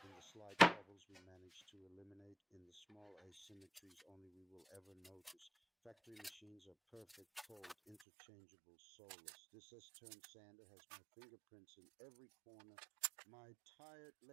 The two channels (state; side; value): drops out; left; at 8.0 s